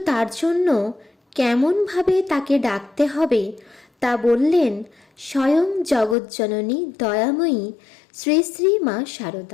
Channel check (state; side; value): drops out; right; at 6.2 s